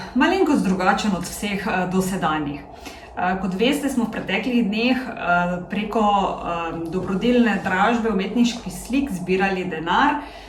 malenkost drugačen od vseh dosedanjih. Kot veste, smo v preteklih dneh preko dobrodelne dražbe umetniških slik zbirali denar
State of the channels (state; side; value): identical; both; correlation 1.00